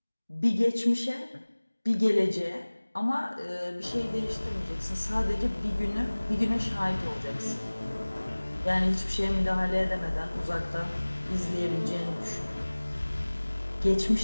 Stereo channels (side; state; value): both; inverted; correlation -1.00